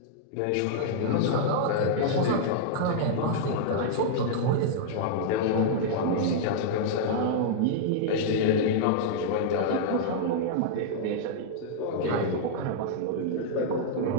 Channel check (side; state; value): both; different; correlation -0.01